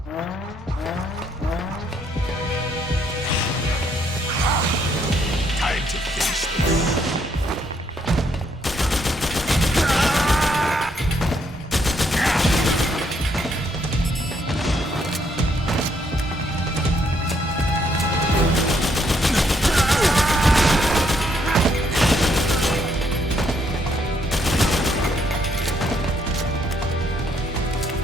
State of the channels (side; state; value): both; normal; correlation 0.71